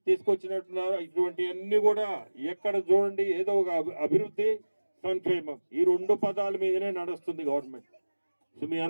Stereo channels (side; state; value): both; inverted; correlation -1.00